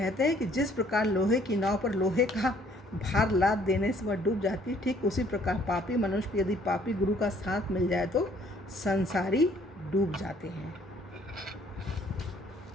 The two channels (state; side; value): normal; both; correlation 0.61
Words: हैं कि जिस प्रकार लोहे की नाव पर लोहे का भार लाद देने से वह डूब जाती है, ठीक उसी प्रकार पापी मनुष्य को यदि पापी गुरु का साथ मिल जाए तो संसारी डूब जाते हैं।